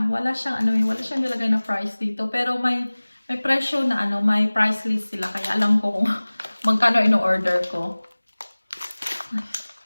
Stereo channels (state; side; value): inverted; both; correlation -1.00